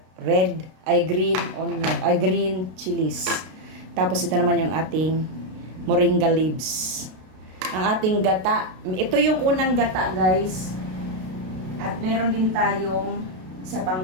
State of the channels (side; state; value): left; late; 32 ms